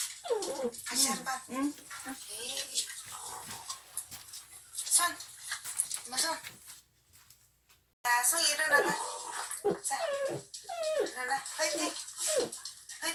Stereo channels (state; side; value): identical; both; correlation 1.00